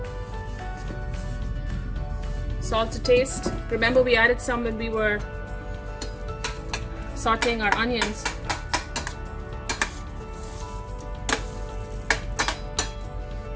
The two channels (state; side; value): identical; both; correlation 1.00